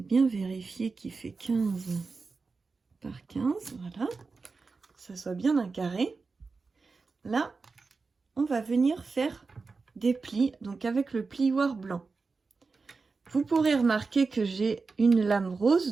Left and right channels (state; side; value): quieter; left; 4.3 dB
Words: vérifier qu'il fait 15 par 15. Voilà. Que ça soit bien un carré. Là, on va venir faire des plis. Donc, avec le plioir blanc. Vous pourrez remarquer que j'ai une lame